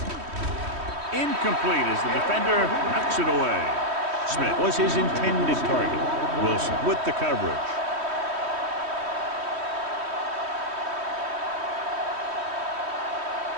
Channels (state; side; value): late; left; 3.1 ms